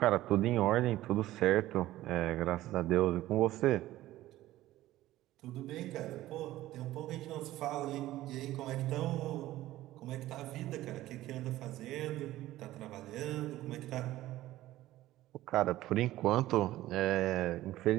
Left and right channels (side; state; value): left; quieter; 15.5 dB